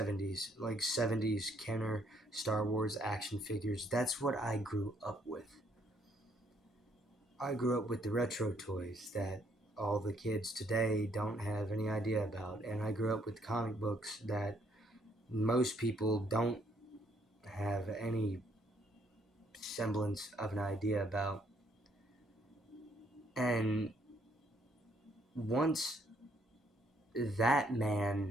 like 70s Kenner Star Wars action figures. That's what I grew up with. I grew up with the retro toys that all the kids today don't have any idea about. And I grew up with comic books that most people don't have any semblance of an idea about. And once that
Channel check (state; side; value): normal; both; correlation 0.68